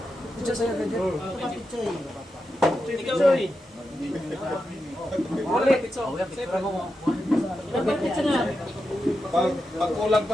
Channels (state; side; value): normal; both; correlation 0.88